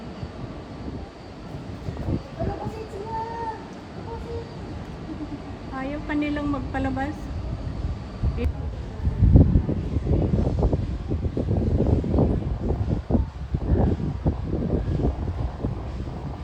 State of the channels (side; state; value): both; identical; correlation 1.00